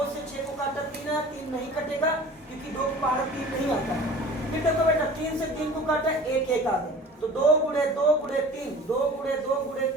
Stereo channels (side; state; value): both; normal; correlation 0.43